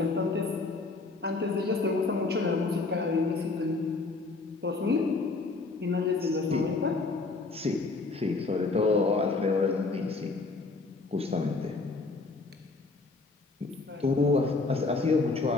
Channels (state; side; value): quieter; right; 3.7 dB